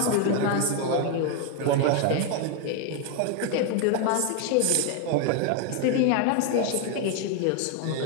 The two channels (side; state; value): both; different; correlation 0.01